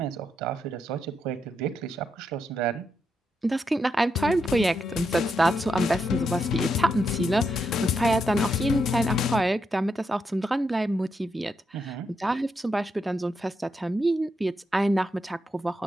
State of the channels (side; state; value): both; normal; correlation 0.82